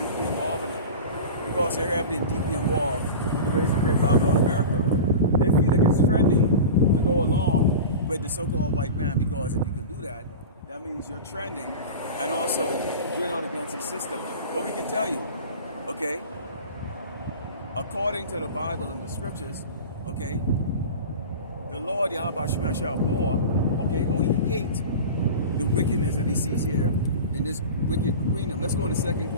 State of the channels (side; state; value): both; inverted; correlation -0.31